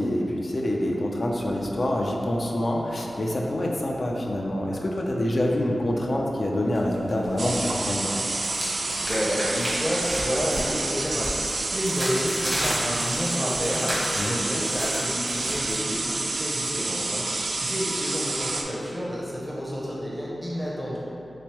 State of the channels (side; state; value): left; noise; hum, 27 dB below the sound